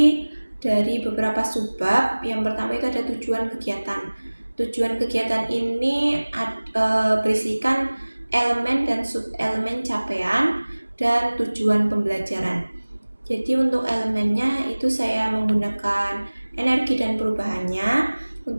dari beberapa subbab. Yang pertama itu ada tujuan kegiatan. Tujuan kegiatan ini berisikan elemen dan sub-elemen capaian dan tujuan pembelajaran. Jadi untuk elemennya itu saya menggunakan energi dan perubahannya.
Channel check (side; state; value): both; inverted; correlation -1.00